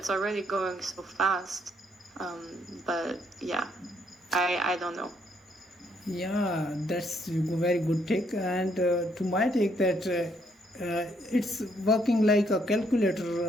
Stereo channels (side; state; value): both; normal; correlation 0.71